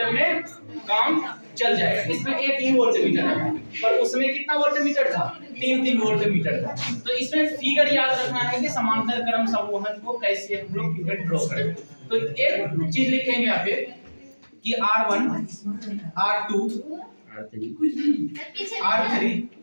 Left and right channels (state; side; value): inverted; both; correlation -1.00